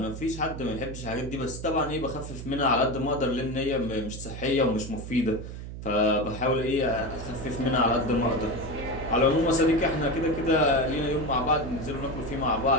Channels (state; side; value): noise; right; hum, 9 dB below the sound